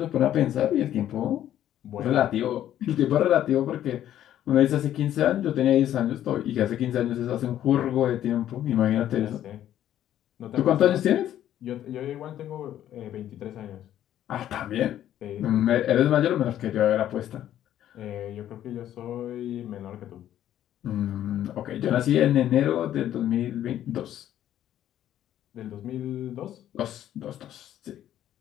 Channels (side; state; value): right; quieter; 11.7 dB